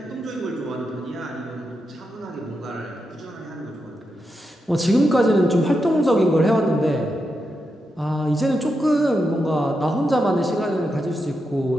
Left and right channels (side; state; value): both; normal; correlation 0.86